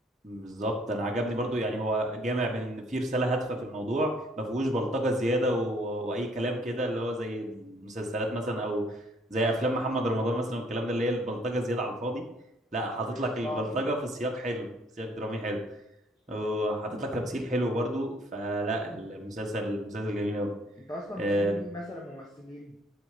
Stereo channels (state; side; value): normal; both; correlation 0.62